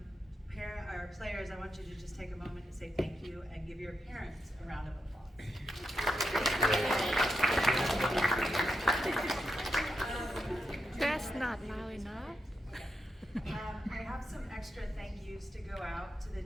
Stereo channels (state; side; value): normal; both; correlation 0.85